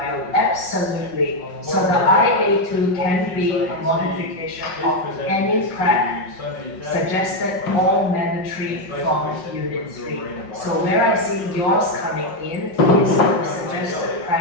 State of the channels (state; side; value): late; right; 5.5 ms